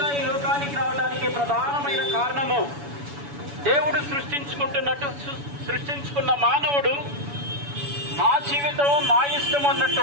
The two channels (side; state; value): left; late; 7.0 ms